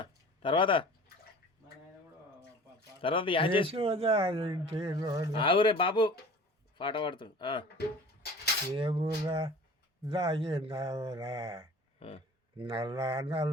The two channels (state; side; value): normal; both; correlation 0.43